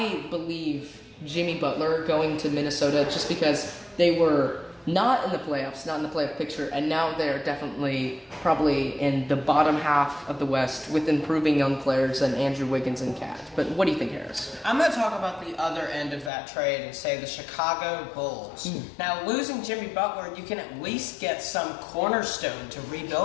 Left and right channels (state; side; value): drops out; right; at 16.3 s